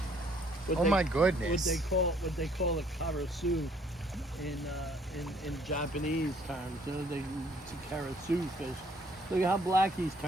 My goodness. What they call a karasu in Japanese terms. You know, it's a karasu fish. Look at how black he's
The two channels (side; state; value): both; normal; correlation 0.63